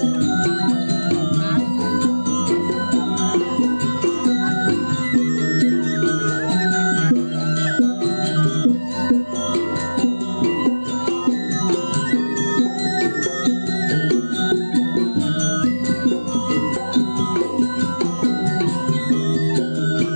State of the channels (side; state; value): both; inverted; correlation -1.00